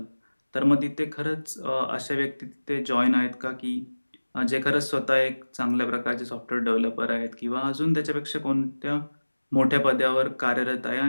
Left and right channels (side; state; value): both; inverted; correlation -1.00